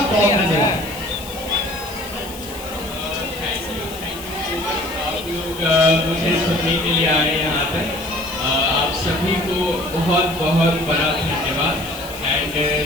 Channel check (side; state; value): left; noise; hiss, 15 dB below the sound